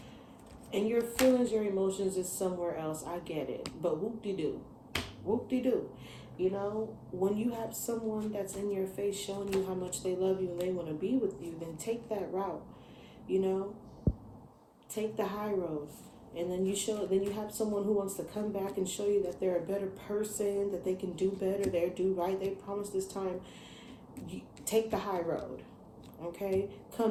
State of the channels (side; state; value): both; identical; correlation 1.00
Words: and your feelings, your emotions is somewhere else. I get it. But whoop-de-doo. Whoop-de-doo. You know, when you have someone that's in your face showing you how much they love you and they want to be with you, then take that route. You know, take the high road. And then you have someone who wants to come back and show you that they're a better person, that they can do better, they do right, they promise this time. You take the high road, okay?